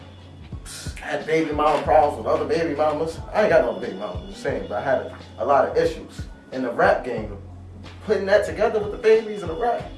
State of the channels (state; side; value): identical; both; correlation 1.00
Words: Had baby mama problems with other baby mamas. I ain't got no baby mamas, I'm just saying, but I had a lot of issues. In the rap game, putting that together with the babies and the rap,